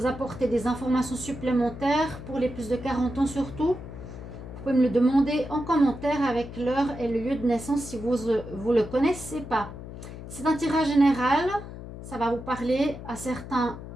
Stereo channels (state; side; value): noise; left; hum, 12 dB below the sound